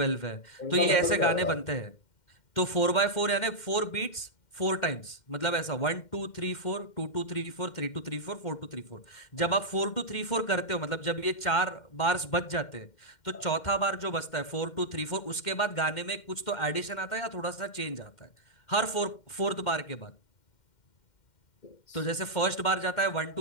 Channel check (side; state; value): right; late; 2.1 ms